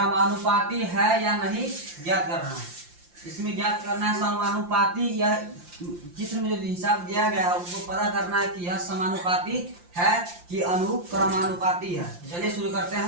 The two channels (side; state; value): left; late; 5.7 ms